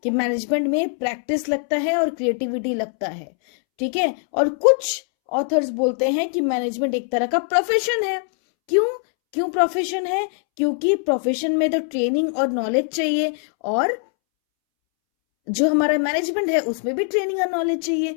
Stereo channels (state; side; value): silent; right; 64 dB below the other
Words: कि मैनेजमेंट में प्रैक्टिस लगता है और क्रिएटिविटी लगता है। ठीक है, और कुछ ऑथर्स बोलते हैं कि मैनेजमेंट एक तरह का प्रोफेशन है। क्यों प्रोफेशन है? क्योंकि प्रोफेशन में तो ट्रेनिंग और नॉलेज चाहिए, और जो हमारा मैनेजमेंट है उसमें भी ट्रेनिंग और नॉलेज चाहिए।